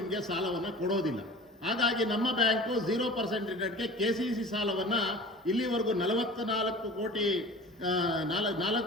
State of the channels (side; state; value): both; normal; correlation 0.39